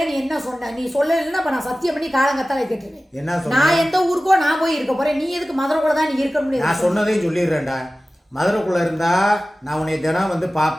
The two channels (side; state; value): both; normal; correlation 0.96